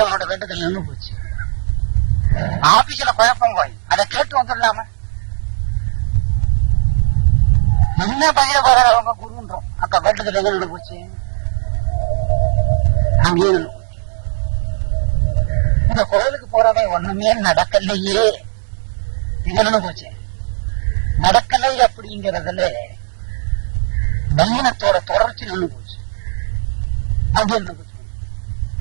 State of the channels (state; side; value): silent; left; digital silence